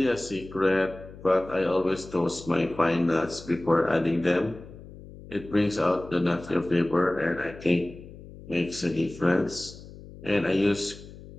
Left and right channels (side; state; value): left; noise; hum, 17 dB below the sound